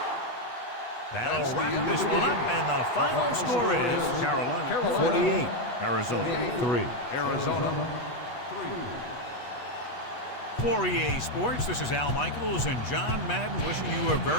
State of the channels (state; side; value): late; right; 8.2 ms